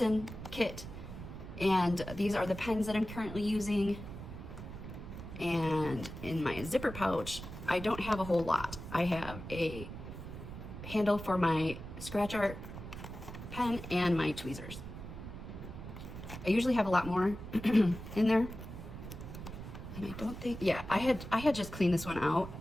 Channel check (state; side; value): noise; right; rumble, 10 dB below the sound